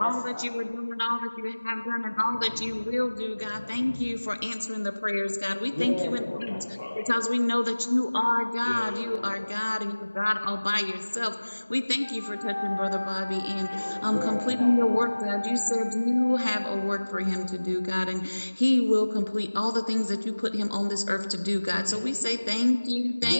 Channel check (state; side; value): inverted; both; correlation -1.00